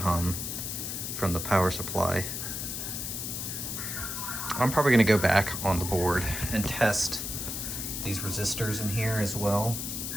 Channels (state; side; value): noise; left; hiss, 4 dB below the sound